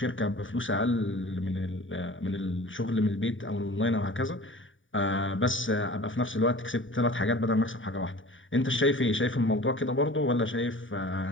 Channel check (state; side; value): late; right; 0.57 ms